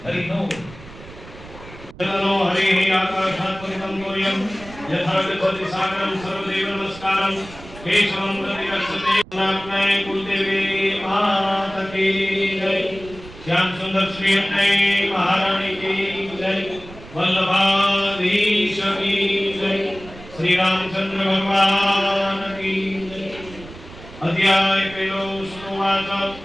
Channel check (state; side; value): noise; right; rumble, 17 dB below the sound